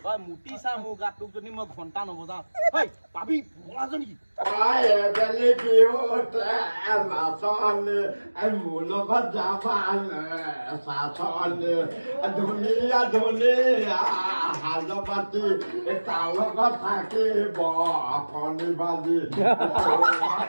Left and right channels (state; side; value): inverted; both; correlation -1.00